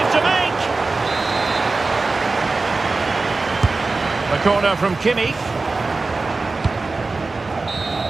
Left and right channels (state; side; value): quieter; left; 3.7 dB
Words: to make! The corner from Kimmich.